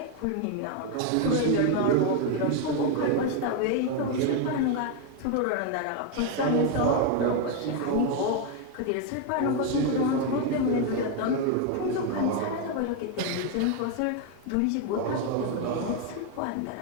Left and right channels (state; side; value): different; both; correlation 0.01